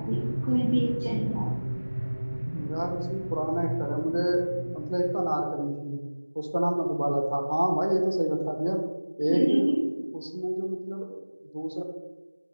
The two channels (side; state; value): both; inverted; correlation -1.00